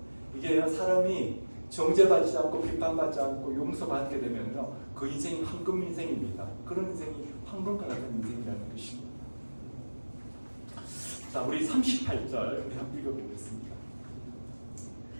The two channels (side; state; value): both; inverted; correlation -1.00